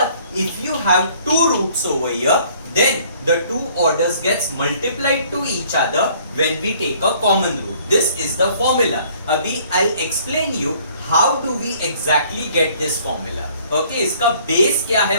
if you have two roots over here, then the two orders gets multiplied to each other when we take a common root. This is the formula. अभी I'll explain you how do we exactly get this formula. Okay, इसका base क्या है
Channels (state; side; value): inverted; both; correlation -0.58